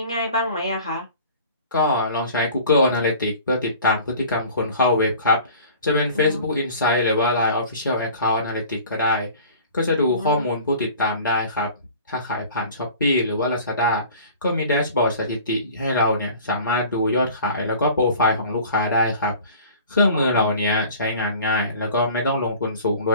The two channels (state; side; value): inverted; both; correlation -0.45